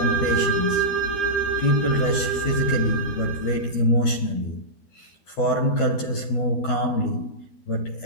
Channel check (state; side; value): late; right; 12 ms